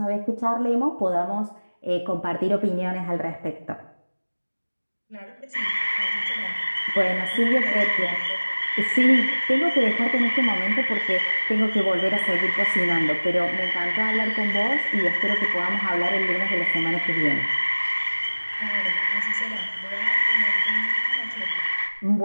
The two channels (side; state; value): both; inverted; correlation -1.00